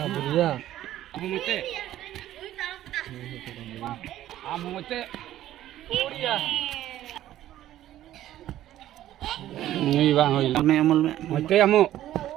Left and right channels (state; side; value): quieter; left; 13.1 dB